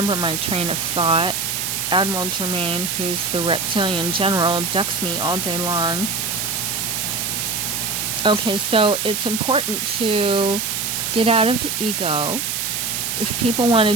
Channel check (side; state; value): right; noise; hiss, 1 dB below the sound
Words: my train of thought. Admiral Germain, who's the reptilian general, abducts me all day long. Okay, so it's important to get out of the ego. If people